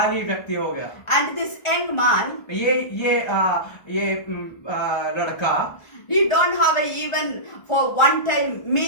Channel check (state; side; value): late; right; 1.4 ms